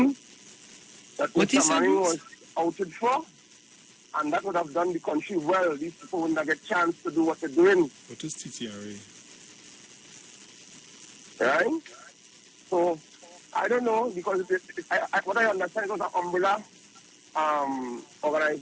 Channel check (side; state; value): both; identical; correlation 1.00